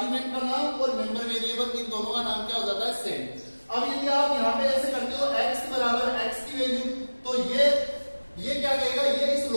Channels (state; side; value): inverted; both; correlation -1.00